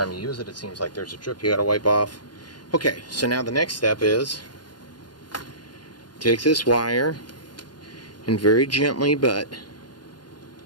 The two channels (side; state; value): right; late; 0.70 ms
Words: you use it, it seems like there's a drip you gotta wipe off. Okay, so now the next step is take this wire and very gently but